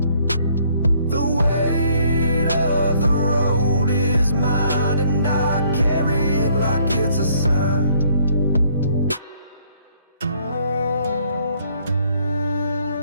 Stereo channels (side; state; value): both; inverted; correlation -0.64